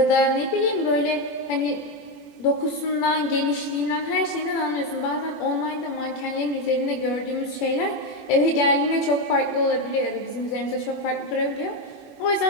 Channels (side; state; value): right; late; 21 ms